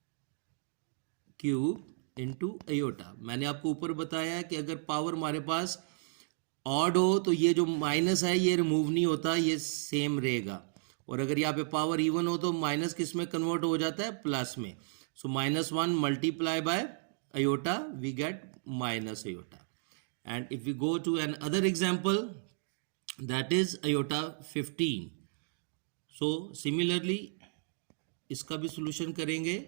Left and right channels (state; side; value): silent; left; digital silence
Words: cube into iota. मैंने आपको ऊपर बताया है कि अगर पावर हमारे पास ऑड हो तो ये जो माइनस है ये रिमूव नहीं होता, ये सेम रहेगा. और अगर यहाँ पे पावर इवन हो तो माइनस किस में कन्वर्ट हो जाता है, प्लस में. So -1 multiply by iota, we get minus iota. And if we go to another example, that is iota 15. सो सिमिलरली इसका भी सोल्यूशन करेंगे,